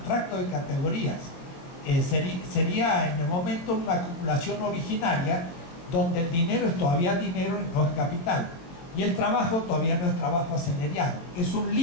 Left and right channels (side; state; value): right; late; 23 ms